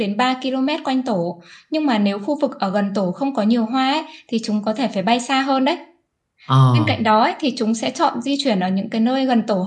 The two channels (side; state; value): both; identical; correlation 1.00